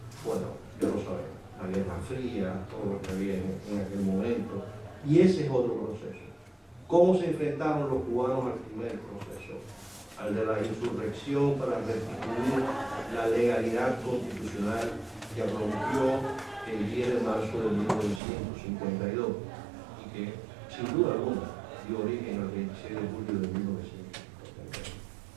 bueno, ya lo sabemos, la Guerra Fría, todo lo que había en aquel momento, y ese es otro proceso. ¿Cómo se enfrentaron los cubanos al primer proceso? Al de la insurrección para restituir la legalidad constitucional que rompió el 10 de marzo de 1952 y que, sin duda alguna, dio origen al 26 de julio de 1952.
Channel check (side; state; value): left; drops out; at 18.2 s